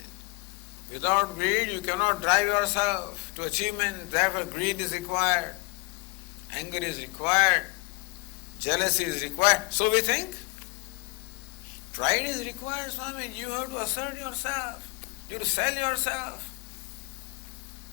Without greed, you cannot drive yourself to achievement. Therefore, greed is required. Anger is required. Jealousy is required. So we think. Pride is required, Swami. You have to assert yourself. You have to sell yourself.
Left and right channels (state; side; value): quieter; right; 28.7 dB